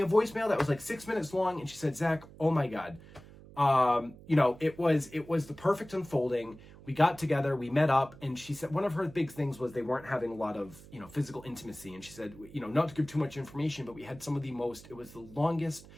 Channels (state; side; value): noise; right; hum, 20 dB below the sound